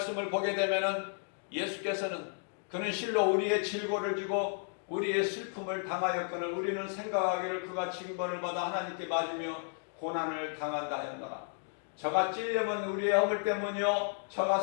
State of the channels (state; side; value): silent; right; 56 dB below the other